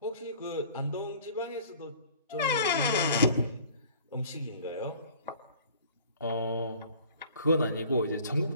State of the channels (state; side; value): inverted; both; correlation -0.49